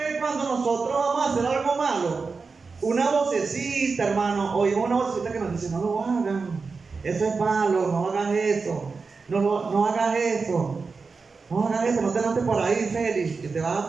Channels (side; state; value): left; quieter; 4.6 dB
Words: cuando nosotros vamos a hacer algo malo, una vocecita, hermano, oímos una vocecita que nos dice, no lo hagan, eso es malo, no hagas eso, no hagas eso, no hagas eso, no te lances por ahí, Félix, que te vas a